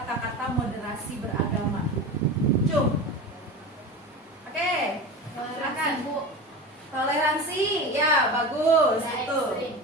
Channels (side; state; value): both; normal; correlation 0.28